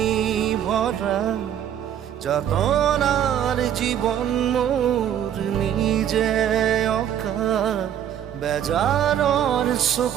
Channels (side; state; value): left; quieter; 10.0 dB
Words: ভরা, যাতনার জীবন মোর নিজে অকা, বেজাৰৰ